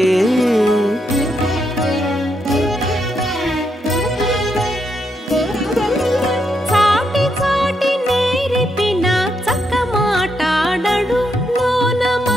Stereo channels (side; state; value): both; normal; correlation 0.80